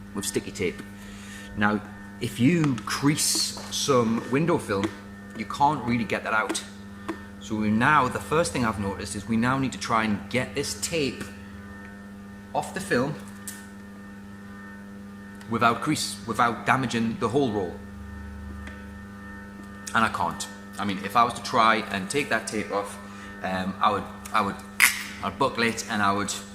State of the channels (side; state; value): both; identical; correlation 1.00